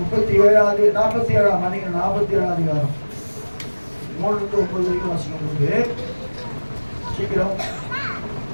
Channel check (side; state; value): both; inverted; correlation -1.00